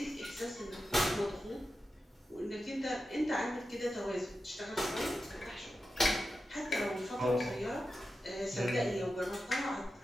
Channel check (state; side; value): normal; both; correlation 0.91